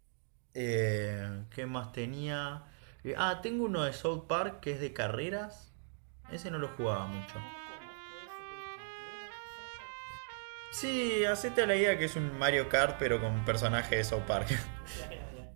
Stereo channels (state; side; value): silent; left; digital silence